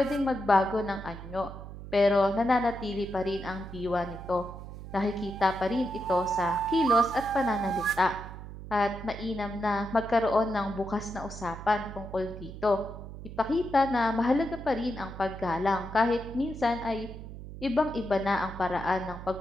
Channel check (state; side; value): noise; right; hum, 12 dB below the sound